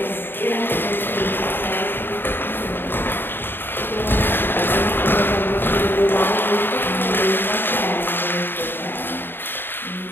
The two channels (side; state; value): right; late; 0.098 ms